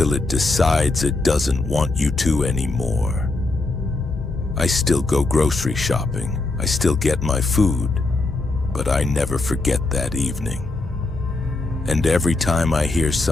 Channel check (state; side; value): quieter; right; 3.2 dB